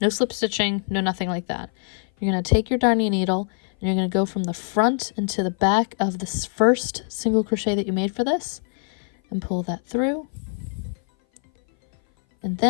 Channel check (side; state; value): right; silent; 57 dB below the other